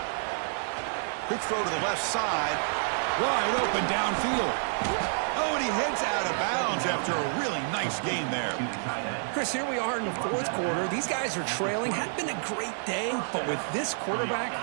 Quick throw to the left side. Wide open downfield. Oh, and he heads out of bounds after a really nice gain there. Chris, here we are in the fourth quarter. These guys are trailing. Hadn't been a great day, but with this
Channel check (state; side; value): silent; left; digital silence